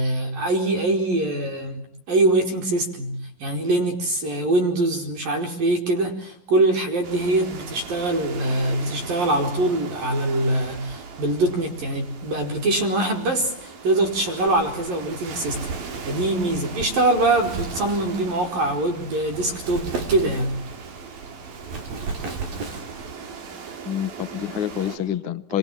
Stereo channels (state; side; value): late; left; 11 ms